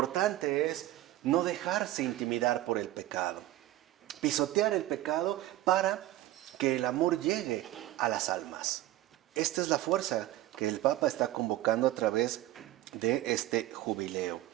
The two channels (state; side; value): quieter; left; 15.4 dB